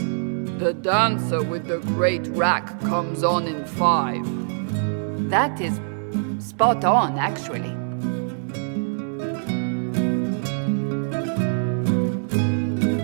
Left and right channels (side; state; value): left; silent; 63 dB below the other